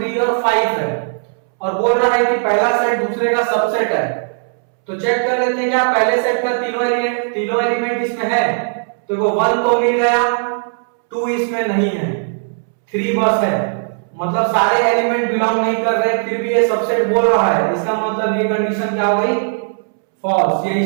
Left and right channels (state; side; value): silent; left; 68 dB below the other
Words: और 5 है, और बोल रहा है कि पहला सेट दूसरे का सबसेट है। तो चेक कर लेते हैं क्या पहले सेट का तीनों एलिमेंट इसमें है, तो वो 1 तो मिल गया, 2 इसमें नहीं है, 3 बस है, मतलब सारे एलिमेंट बिलोंग नहीं कर रहे, फिर भी ये सबसेट बोल रहा है। इसका मतलब ये कंडीशन क्या हो गई, फॉल्स,